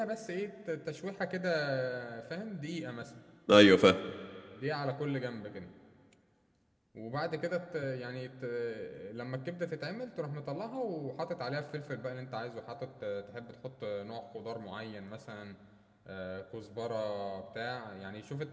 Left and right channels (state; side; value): identical; both; correlation 1.00